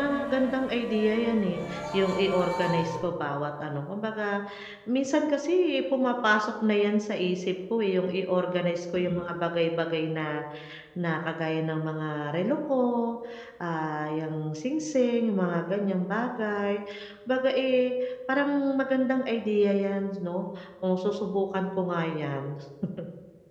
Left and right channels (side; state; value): both; identical; correlation 1.00